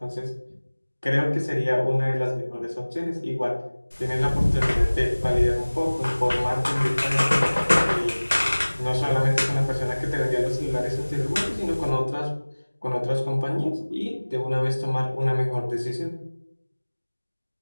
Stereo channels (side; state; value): both; inverted; correlation -1.00